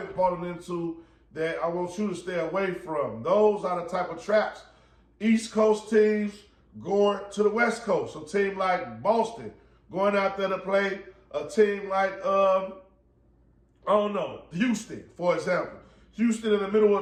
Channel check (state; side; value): identical; both; correlation 1.00